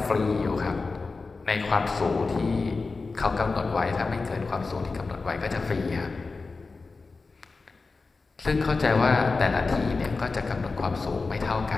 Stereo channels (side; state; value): right; quieter; 4.0 dB